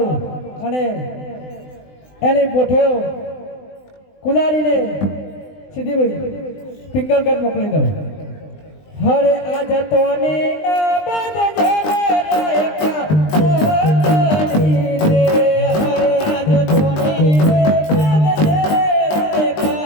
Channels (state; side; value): late; right; 20 ms